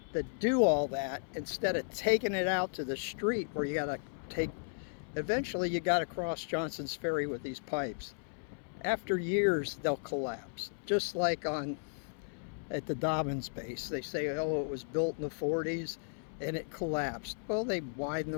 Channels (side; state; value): right; silent; 55 dB below the other